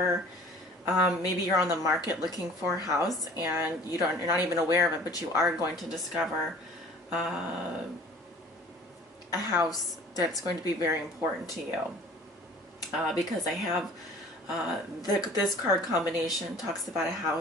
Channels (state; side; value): normal; both; correlation 0.48